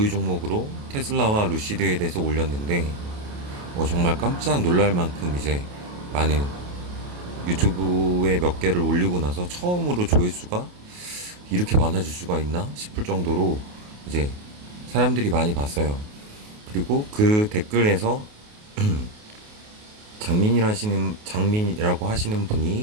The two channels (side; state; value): left; late; 28 ms